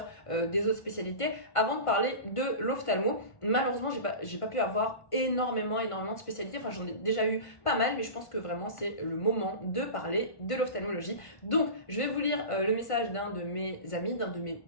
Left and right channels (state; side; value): late; right; 1.5 ms